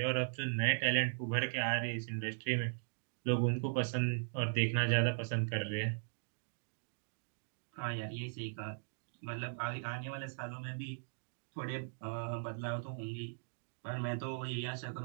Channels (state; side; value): silent; left; digital silence